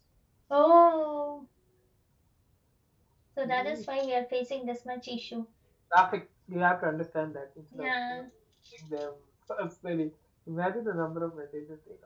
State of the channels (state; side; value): identical; both; correlation 1.00